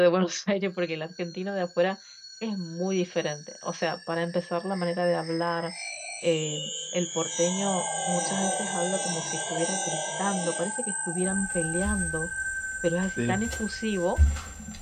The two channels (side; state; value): both; identical; correlation 1.00